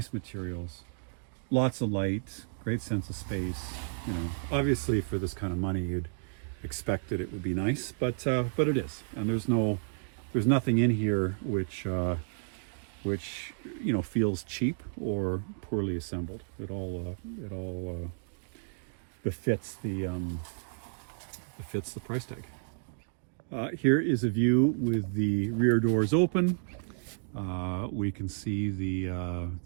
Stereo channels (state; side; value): silent; left; digital silence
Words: materials, lots of light, great sense of space. You know, obviously for this kind of money, you'd expect that it would be nice, but it is, and there's nothing in here which feels cheap or poorly assembled. It all befits the price tag. Here is a view with the rear doors open. We can see the